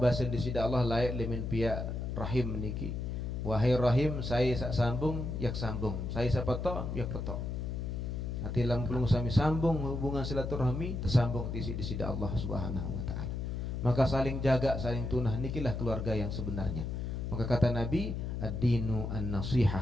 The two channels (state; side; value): noise; left; hum, 3 dB below the sound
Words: di sida Allah layak lemin pihak rahim niki. Wahai rahim, saya sak sambung yak sambung, saya sak petok yak petok. Hati lampung sami sambung hubungan silaturahmi tersambung di sida Allah Subhanahu wa taala. Maka saling jaga, saling tunah, nikilah keluarga yang sebenarnya. Maka kata Nabi, ad-dinu